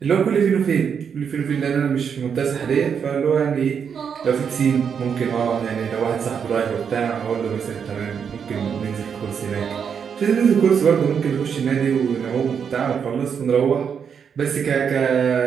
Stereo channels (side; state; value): left; quieter; 7.1 dB